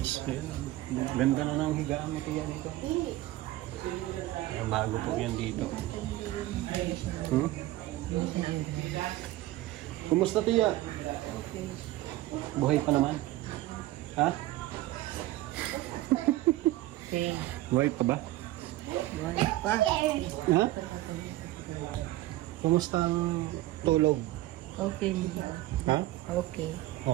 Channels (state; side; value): quieter; left; 16.6 dB